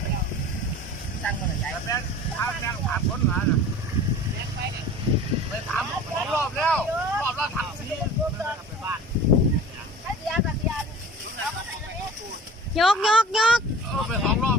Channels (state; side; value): normal; both; correlation 0.41